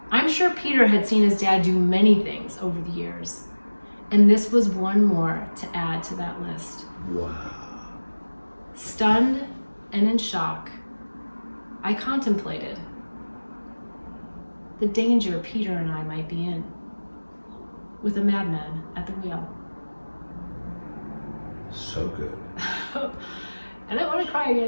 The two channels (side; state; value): both; inverted; correlation -1.00